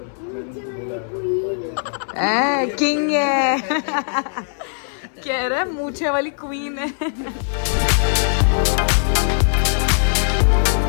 किंग है। कह रहा है मूछे वाली क्वीन है।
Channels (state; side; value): silent; right; digital silence